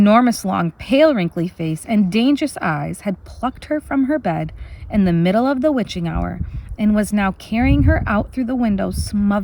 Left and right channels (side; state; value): both; identical; correlation 1.00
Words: long, pale, wrinkly face and dangerous eyes had plucked her from her bed in the middle of the witching hour and was now carrying her out through the window